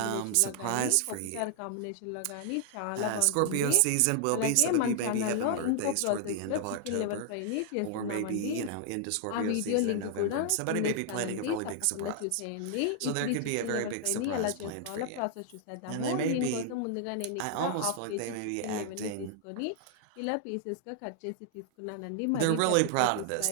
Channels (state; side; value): different; both; correlation 0.00